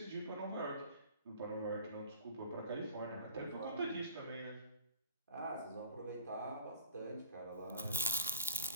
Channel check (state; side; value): inverted; both; correlation -0.47